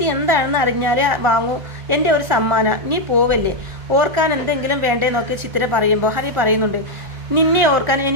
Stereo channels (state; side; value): late; left; 1.4 ms